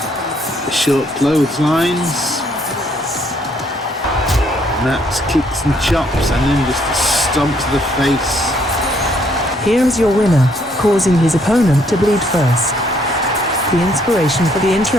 The short clotheslines. Matt's kicks and chops, and then just a stomp to the face. Here is your winner, causing his opponent to bleed first. The inspiration for the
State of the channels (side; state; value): both; normal; correlation 0.68